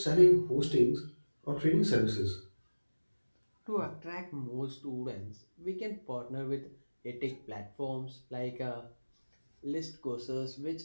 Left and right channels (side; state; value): both; inverted; correlation -1.00